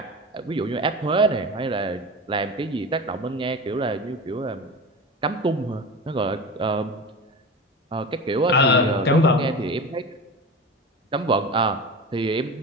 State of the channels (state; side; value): normal; both; correlation 0.29